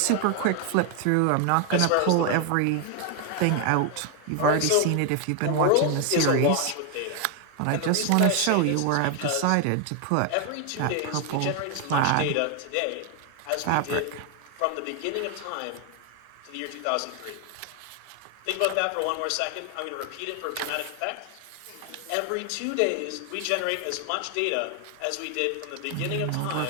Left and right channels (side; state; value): both; different; correlation 0.01